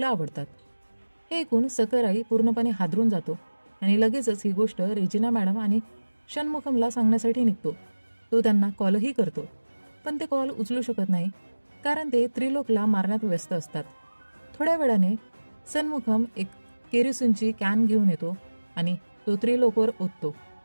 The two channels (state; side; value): inverted; both; correlation -1.00